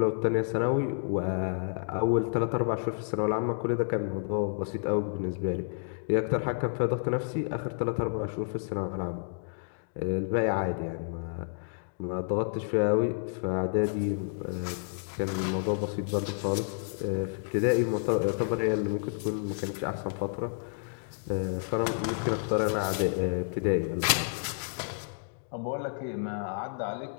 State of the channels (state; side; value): silent; right; digital silence